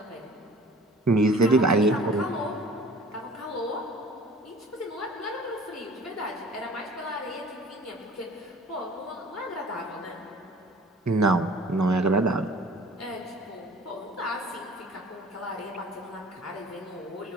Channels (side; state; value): both; normal; correlation 0.47